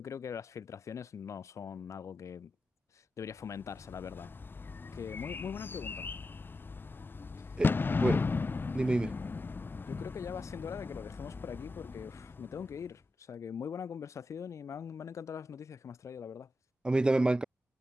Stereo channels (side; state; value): both; normal; correlation 0.89